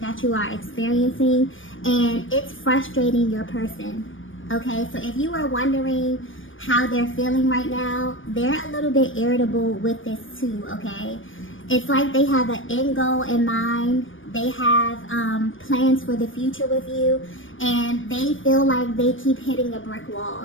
you are experiencing, and it's frustrating your person. Okay, so if you were wondering how they're feeling right now, they're a little bit irritable with this too, okay? It's like they have an end goal in mind. They have plans for the future with you, and they feel like they keep hitting a brick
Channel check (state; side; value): late; right; 0.57 ms